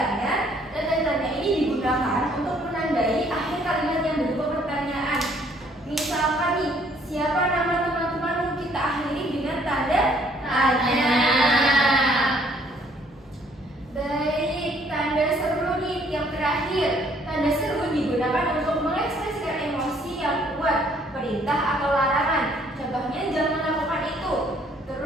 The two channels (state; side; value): normal; both; correlation 0.63